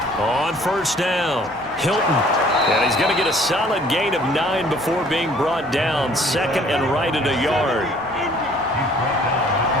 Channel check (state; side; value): normal; both; correlation 0.56